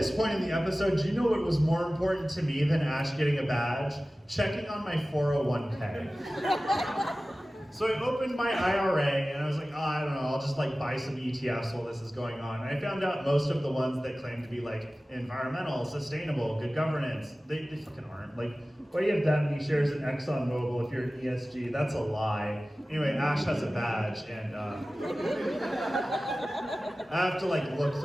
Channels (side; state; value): both; normal; correlation 0.96